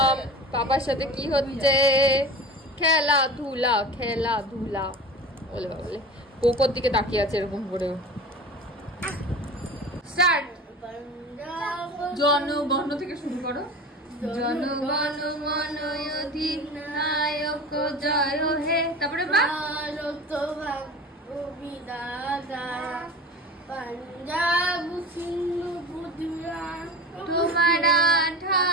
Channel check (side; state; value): both; normal; correlation 0.33